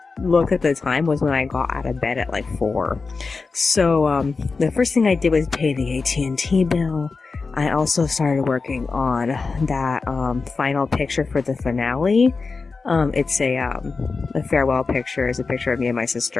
looked at the time was when I got out of bed at like 4. So the first thing I did was pay the AT&T bill. I also started working on that final picture for the finale. It's a farewell picture. It's a picture of me and my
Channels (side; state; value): right; quieter; 4.3 dB